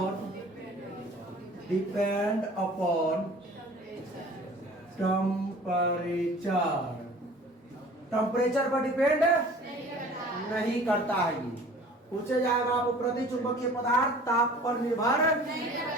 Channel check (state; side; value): normal; both; correlation 0.46